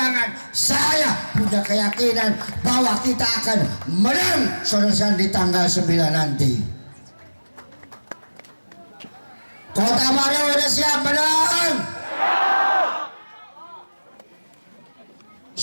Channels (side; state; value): both; inverted; correlation -1.00